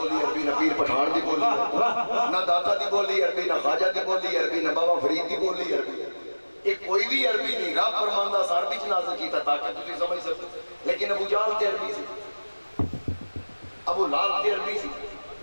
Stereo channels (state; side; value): inverted; both; correlation -1.00